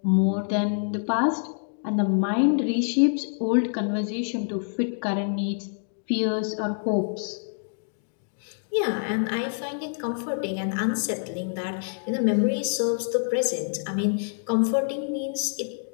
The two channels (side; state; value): right; silent; digital silence